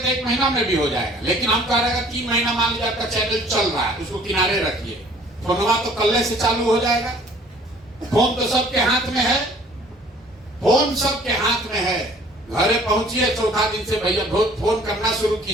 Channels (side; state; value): both; normal; correlation 0.54